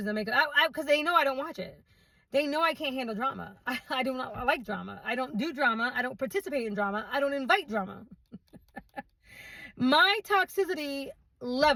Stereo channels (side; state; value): both; identical; correlation 1.00